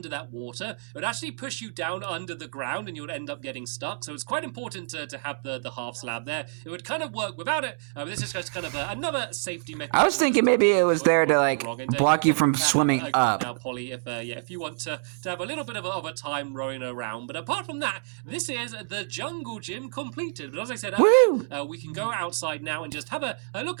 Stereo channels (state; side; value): silent; left; digital silence